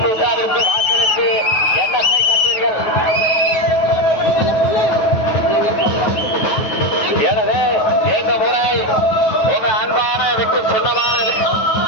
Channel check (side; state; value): right; late; 9.3 ms